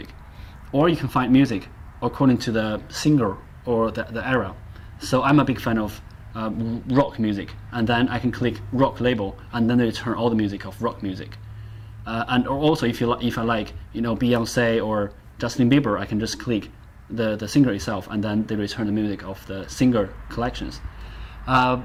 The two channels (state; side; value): identical; both; correlation 1.00